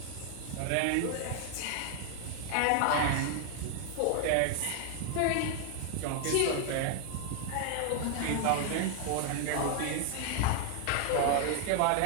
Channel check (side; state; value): both; different; correlation 0.00